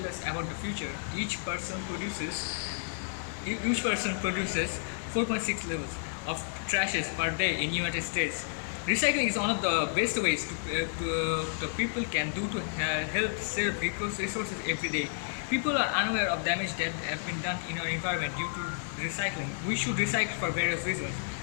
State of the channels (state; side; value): silent; right; 57 dB below the other